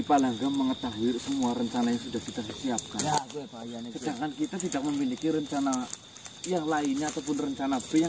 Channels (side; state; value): both; identical; correlation 1.00